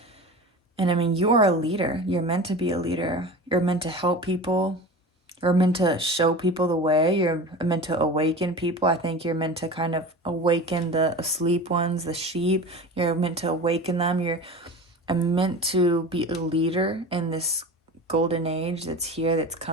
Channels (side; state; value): both; normal; correlation 0.33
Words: And I mean, you are a leader. You're meant to be a leader. You're meant to help people. You're meant to show people the way. You're meant to awaken people. I think you're meant to kind of awaken the asleep ones, the sheep. You're meant to awaken them. You're meant to be a leader in this golden age that's here, that's